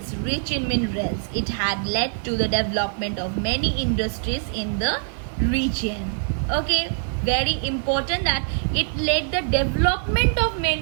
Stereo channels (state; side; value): silent; left; 63 dB below the other